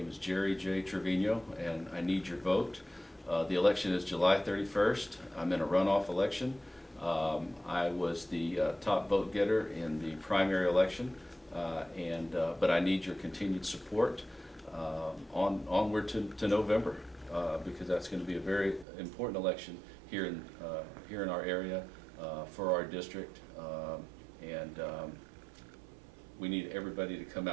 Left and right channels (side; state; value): left; drops out; at 18.9 s